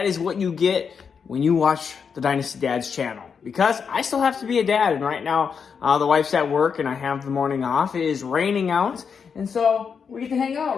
is what you get when you watch the Dynasty Dads channel. Because I still have to be a dad, and right now the wife's at work, and I have the morning off. It is raining out, and so we get to hang out,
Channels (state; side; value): quieter; right; 6.3 dB